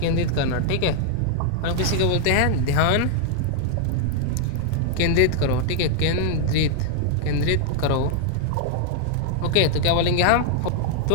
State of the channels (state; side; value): different; both; correlation 0.00